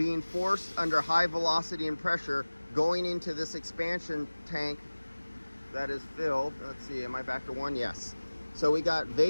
forced under high velocity and pressure, going into this expansion tank that is filled. Let's see, am I back to one? Yes. So we got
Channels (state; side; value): inverted; both; correlation -1.00